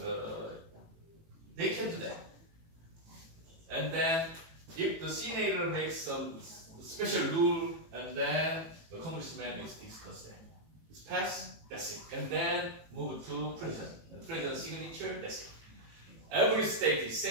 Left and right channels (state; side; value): late; left; 18 ms